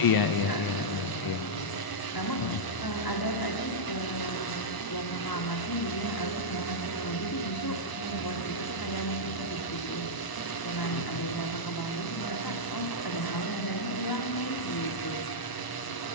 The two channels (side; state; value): right; late; 1.0 ms